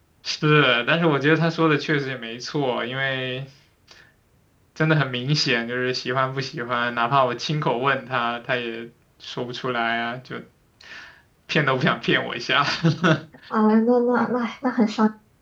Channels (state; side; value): identical; both; correlation 1.00